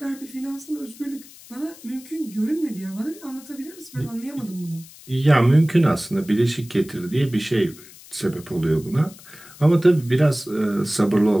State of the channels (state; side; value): noise; left; hiss, 20 dB below the sound